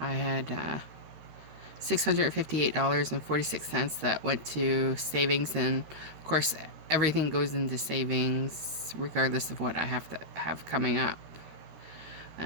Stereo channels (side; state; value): left; late; 13 ms